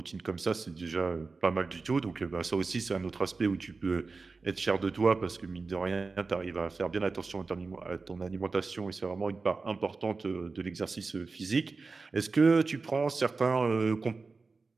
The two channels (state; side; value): quieter; left; 4.1 dB